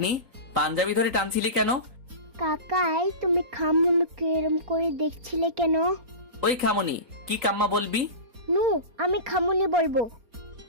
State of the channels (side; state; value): left; late; 3.9 ms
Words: পাঞ্জাবি ধরে টানছিলি কেন? কাকাই, তুমি খামুনিকে এরম করে দেখছিলে কেন? ওই খামনি, কি কাম্মা বলবি? নু, আমি খামুনি বলবো।